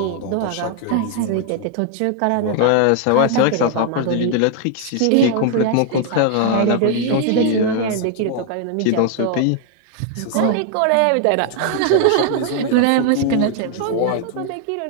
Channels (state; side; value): different; both; correlation 0.00